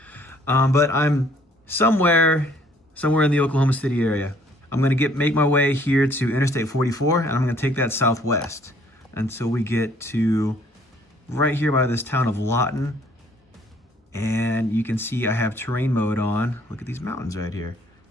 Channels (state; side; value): normal; both; correlation 0.60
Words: but I'm somewhere in the Oklahoma City area. I'm gonna make my way here to Interstate 44, and I'm gonna take that southwest until we get to right here by this town of Lawton. And you can see I have terrain mode on. Look at these mountains right here.